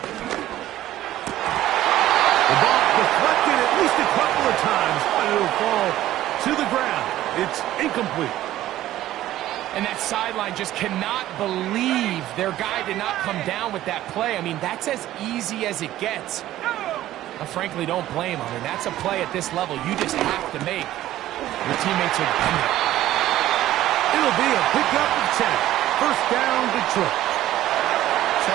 The ball deflected at least a couple of times, but it'll fall to the ground. It's incomplete. And that sideline just cannot believe their guy did not come down with that play. I mean, that's as easy as it gets. I frankly don't blame him. And that's a play at this level you just have to make. Your teammates are dependent. It'll be a pickup of 10. First down, Detroit. So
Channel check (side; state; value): left; quieter; 14.0 dB